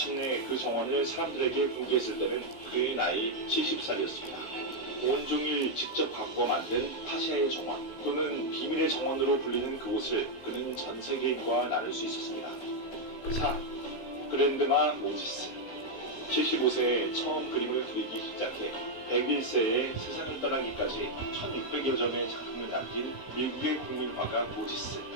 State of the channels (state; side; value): late; right; 16 ms